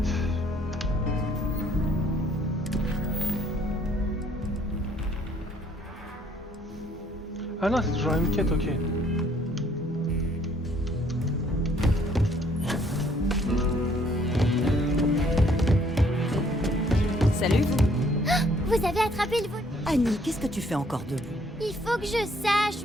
Ah non, c'est toujours la même quête, ok. Salut vous. Vous avez attrapé le vol. Annie, qu'est-ce que tu fais encore debout? Il faut que je sache,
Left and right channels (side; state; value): both; normal; correlation 0.63